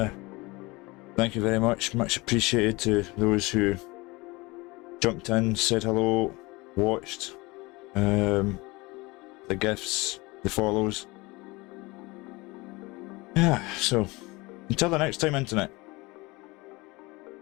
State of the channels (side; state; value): right; quieter; 23.4 dB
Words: you very much. Much appreciated to those who jumped in, said hello, watched, the gifts, the follows. Yeah, so until the next time, internet.